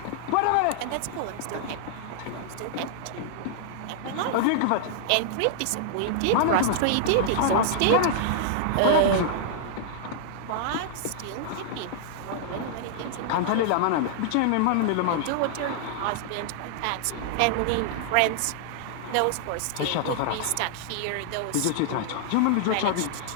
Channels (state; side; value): different; both; correlation -0.01